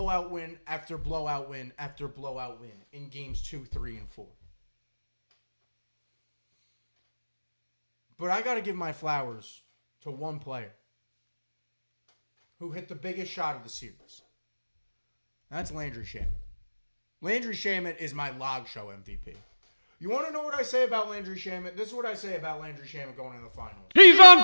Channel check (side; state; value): both; inverted; correlation -1.00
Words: win after blowout win after blowout win in games 2, 3, and 4. But I got to give my flowers to one player who hit the biggest shot of the series. That's Landry Shamet. Landry Shamet is my log show MVP. You want to know what I say about Landry Shamet? This is what I say about Landry Shamet going into the finals. He's